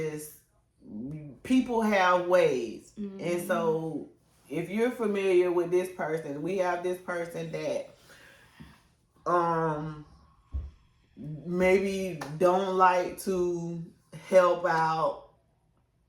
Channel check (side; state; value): both; identical; correlation 1.00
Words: people have ways, and so if you're familiar with this person, we have this person that maybe don't like to help out